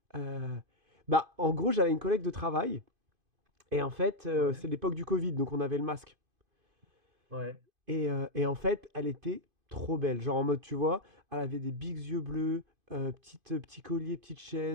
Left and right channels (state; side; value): late; left; 2.5 ms